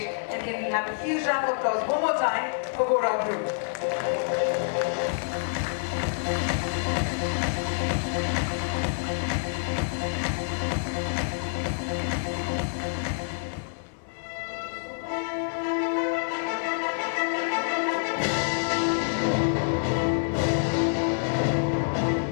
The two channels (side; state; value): right; silent; 60 dB below the other